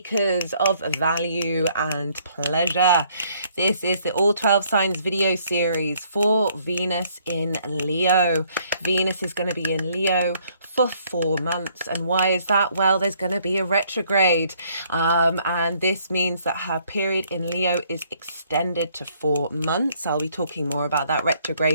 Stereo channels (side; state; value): both; inverted; correlation -0.65